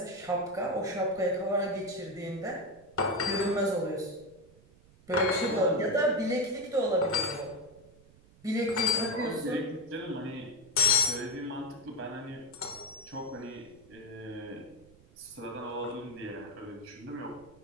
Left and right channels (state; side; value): noise; right; rumble, 26 dB below the sound